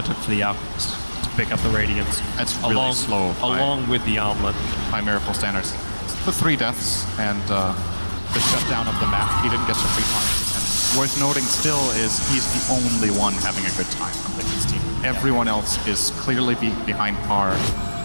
took for the Alchemist to pick up the Radiance. That's really slow. Along with the Armlet. By Miracle standards. The 3 deaths and the shutdown of the map. He didn't get to free time. And worth noting still is he's the only one having a good time on Liquid's team. Everyone else is clearly behind par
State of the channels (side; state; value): both; inverted; correlation -1.00